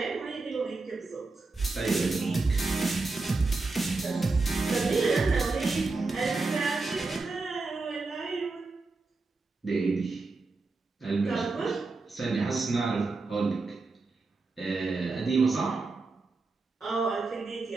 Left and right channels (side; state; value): left; quieter; 3.7 dB